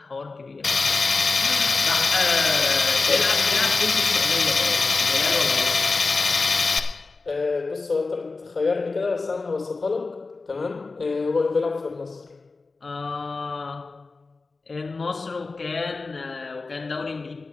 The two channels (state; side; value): quieter; right; 3.9 dB